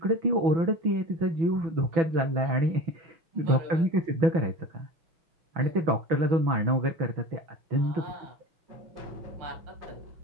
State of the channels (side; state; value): left; late; 6.1 ms